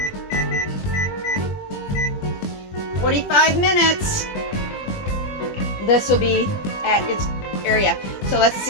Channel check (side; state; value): right; late; 20 ms